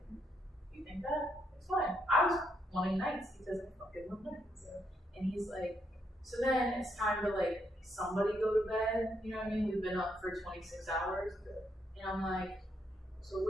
you think that? It's fine." I was wanting nights because I fucking love nights. And he's like, "So then it's time to like somebody go to bed. You know what I mean? We've been up for 26 hours." And I'm like, "So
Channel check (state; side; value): normal; both; correlation 0.77